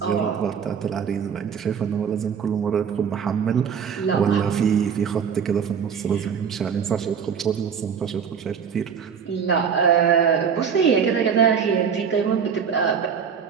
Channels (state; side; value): quieter; left; 7.0 dB